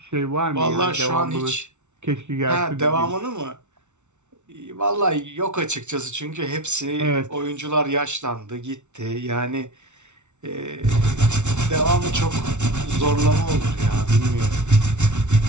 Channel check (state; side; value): late; left; 0.83 ms